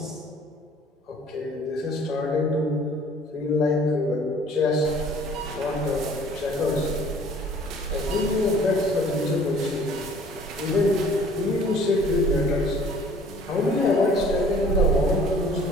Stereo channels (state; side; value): normal; both; correlation 0.52